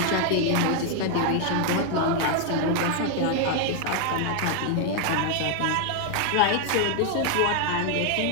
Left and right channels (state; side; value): different; both; correlation 0.00